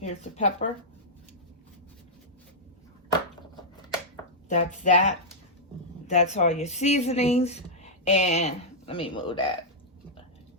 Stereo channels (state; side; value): normal; both; correlation -0.08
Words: the pepper. That's that. That's all your seasonings. And let me move that.